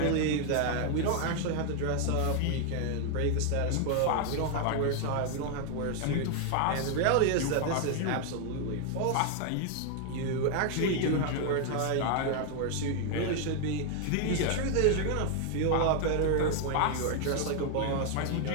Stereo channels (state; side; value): different; both; correlation 0.00